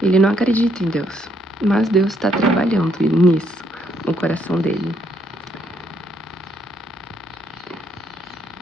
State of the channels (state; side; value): normal; both; correlation 0.72